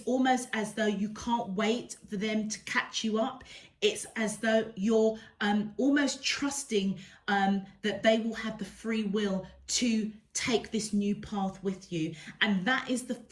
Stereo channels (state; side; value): identical; both; correlation 1.00